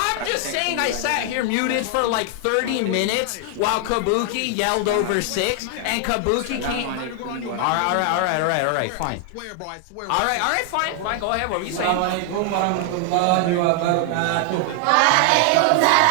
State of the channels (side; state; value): both; different; correlation 0.00